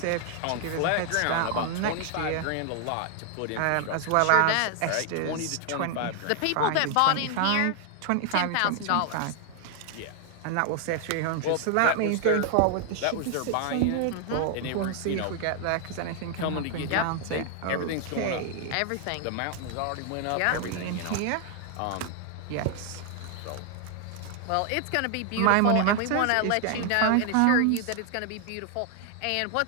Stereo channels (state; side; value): different; both; correlation 0.00